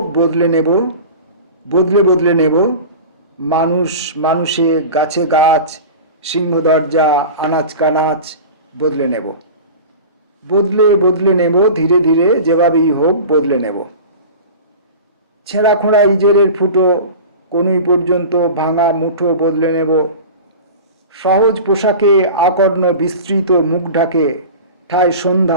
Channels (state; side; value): inverted; both; correlation -0.34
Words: বদলে নেব, বদলে নেব মানুষ মানুষে, গাছে গাছ, সিংহ দরজা, আনাচ কানাচ বদলে নেব। বদলে নেব ধীরে ধীরে যেভাবেই হোক বদলে নেব। ছেঁড়া খোঁড়া ইজেরের ফুটো, কনুই পর্যন্ত ভাঙা মুঠো বদলে নেব। সহজ পোশাকে আকর্ণ বিস্তৃত মুখ ঢাকে, ঠায়